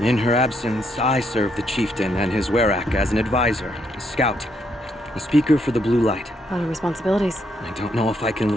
her absence, I serve the chieftain and his werak as an advisor, a scout, a speaker for the blue light. A lot of responsibilities. I don't know if I can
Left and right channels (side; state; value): both; normal; correlation 0.75